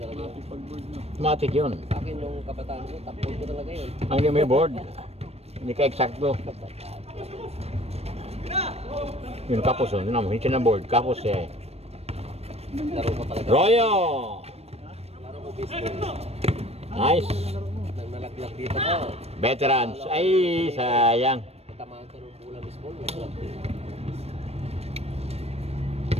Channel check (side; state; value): left; late; 0.30 ms